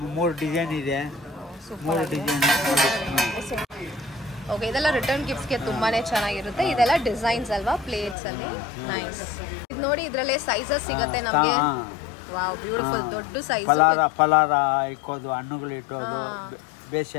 3 ಡಿಸೈನ್ ಇದೆ. 3 ಡಿಸೈನ್. ಓಕೆ, ಇದೆಲ್ಲ ರಿಟರ್ನ್ ಗಿಫ್ಟ್ಸ್ಗೆ ತುಂಬಾನೇ ಚೆನ್ನಾಗಿರುತ್ತೆ. ಇದೆಲ್ಲ ಡಿಸೈನ್ಸ್ ಅಲ್ವಾ ಪ್ಲೇಟ್ಸ್ ಅಲ್ಲಿ? ನೈಸ್. ಇದು ನೋಡಿ, ಇದರಲ್ಲೇ ಸೈಜಸ್ ಸಿಗುತ್ತೆ ನಮಗೆ. Wow, beautiful. ದೊಡ್ಡ ಸೈಜ್. ಪಲಾರ ಇಕ್ಕೋದು, ಹಣ್ಣುಗಳು ಇಟ್ಟೋದು,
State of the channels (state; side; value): drops out; right; at 8.2 s